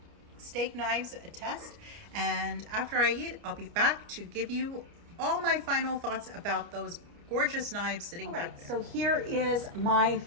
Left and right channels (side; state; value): left; late; 29 ms